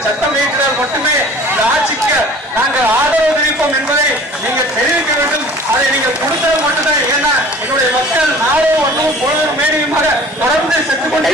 சட்டம் இயற்றினால் மட்டுமே இந்த ஆட்சிக்கு நாங்கள் ஆதரவு தெரிவிப்போம் என்பதை நீங்க தெரிவிக்க வேண்டும். அதை நீங்க கொடுத்தால் மட்டும்தான். ஏன்னா என்னுடைய மக்கள் நாளும் ஒன்றும் பொழுதும் மேனியுமாக தொடர்ந்து செத்துக்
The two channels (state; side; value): normal; both; correlation 0.46